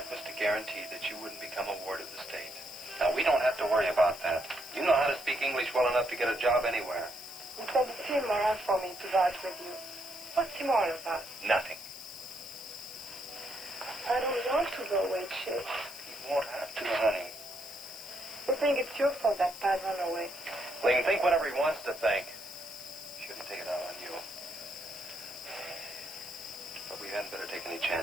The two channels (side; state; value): left; noise; hiss, 15 dB below the sound